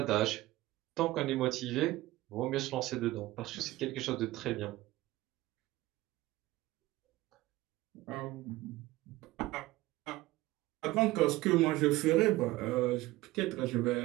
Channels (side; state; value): left; quieter; 18.2 dB